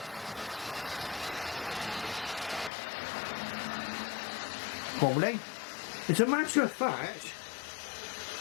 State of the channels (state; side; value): drops out; right; at 2.7 s